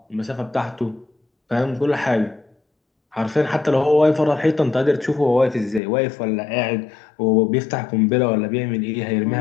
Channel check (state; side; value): drops out; right; at 5.8 s